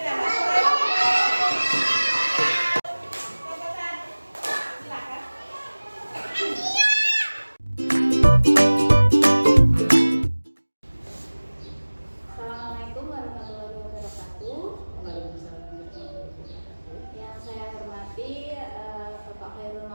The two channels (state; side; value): inverted; both; correlation -1.00